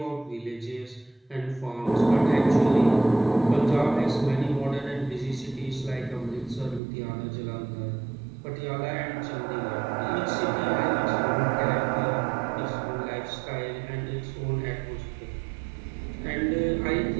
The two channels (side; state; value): left; drops out; at 6.8 s